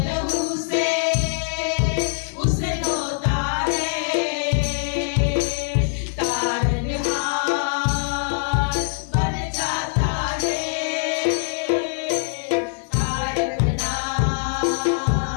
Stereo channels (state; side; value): silent; right; digital silence